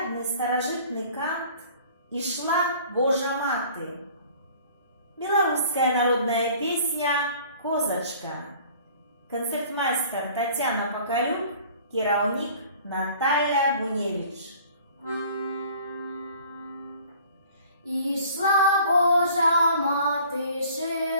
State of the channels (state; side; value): inverted; both; correlation -0.50